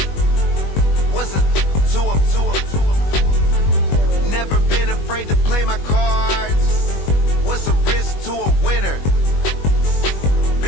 What's a two up? Never been afraid to play my cards. What's a risk to a winner?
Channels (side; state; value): right; late; 21 ms